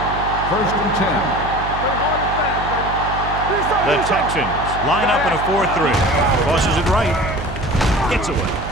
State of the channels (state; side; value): noise; right; hum, 8 dB below the sound